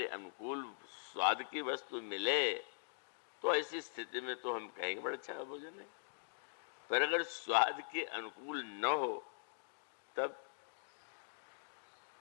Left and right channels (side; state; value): right; silent; digital silence